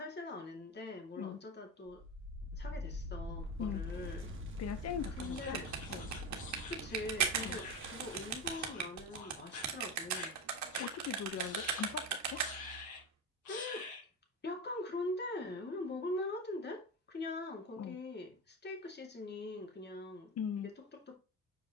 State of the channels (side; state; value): both; normal; correlation 0.21